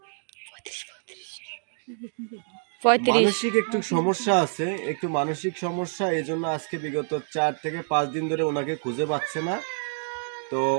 35। মানসিক একটু সমস্যা আছে, একটু মানসিক সমস্যা, এই জন্য আজকে বিগত 4 থেকে 5 দিন ধরে ওনাকে খুঁজে পাচ্ছে না। তো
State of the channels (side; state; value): left; silent; digital silence